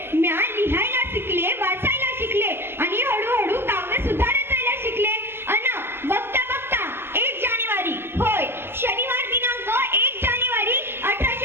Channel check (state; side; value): late; left; 0.11 ms